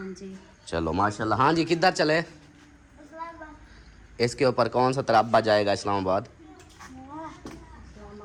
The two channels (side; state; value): both; identical; correlation 1.00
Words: जी। चलो माशाल्लाह। हाँ जी, किधर चले? इसके ऊपर कौन सा तराबा जाएगा? इस्लामाबाद।